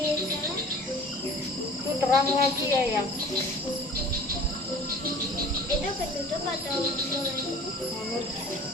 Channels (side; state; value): both; normal; correlation 0.45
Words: Itu terang lagi ya yang Itu ketutup atau boleh?